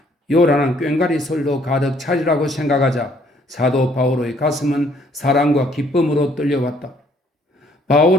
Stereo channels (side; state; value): both; normal; correlation 0.64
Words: 요란한 꽹과리 소리로 가득 차리라고 생각하자 사도 바오로의 가슴은 사랑과 기쁨으로 떨려왔다.